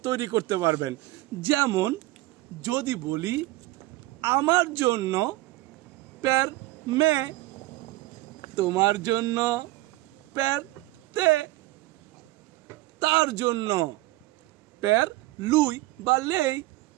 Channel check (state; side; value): quieter; left; 18.9 dB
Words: তৈরি করতে পারবেন। যেমন যদি বলি আমার জন্য পের মে, তোমার জন্য পের তে, তার জন্য পের লুই বা লেই,